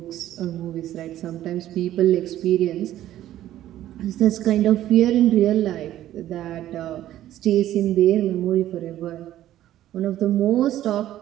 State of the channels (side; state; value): left; quieter; 13.1 dB